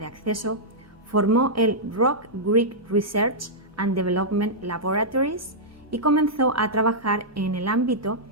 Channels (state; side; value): normal; both; correlation -0.10